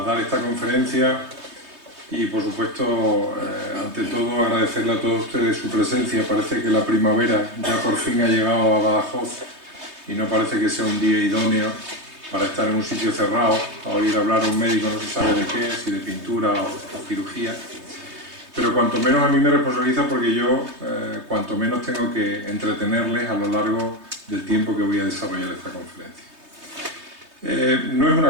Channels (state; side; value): late; left; 3.2 ms